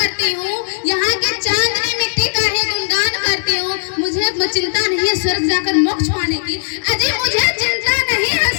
हूँ, यहाँ की चांदनी मिट्टी का ही गुणगान करती हूँ। मुझे चिंता नहीं है स्वर्ग जाकर मोक्ष पाने की। अजी मुझे चिंता नहीं है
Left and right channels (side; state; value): right; silent; 63 dB below the other